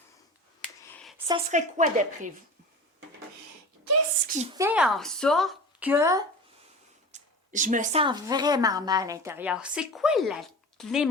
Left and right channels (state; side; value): normal; both; correlation 0.34